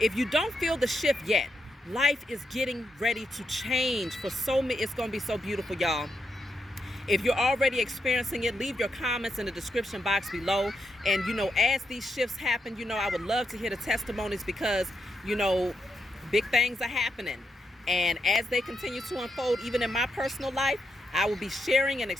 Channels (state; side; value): normal; both; correlation 0.83